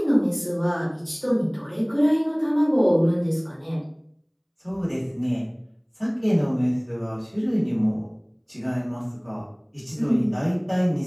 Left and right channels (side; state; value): both; identical; correlation 1.00